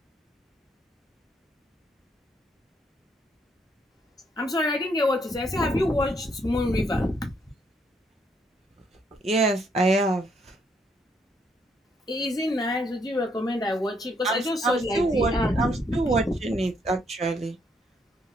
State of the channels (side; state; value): both; normal; correlation 0.72